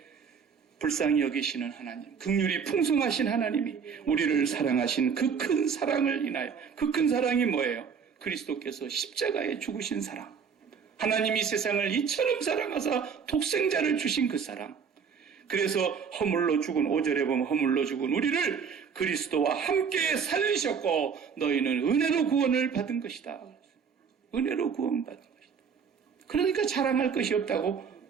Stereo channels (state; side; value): quieter; left; 6.5 dB